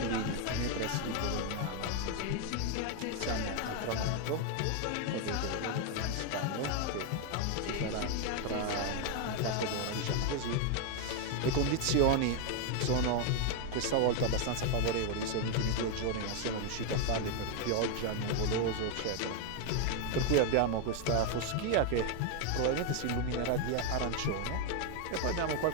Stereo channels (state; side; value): different; both; correlation 0.01